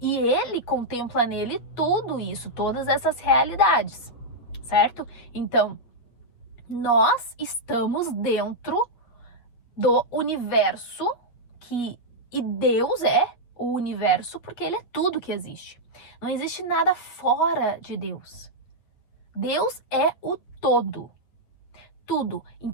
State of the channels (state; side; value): late; right; 8.5 ms